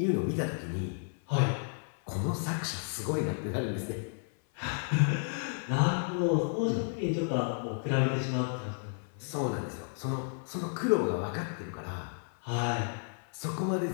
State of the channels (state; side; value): silent; right; 56 dB below the other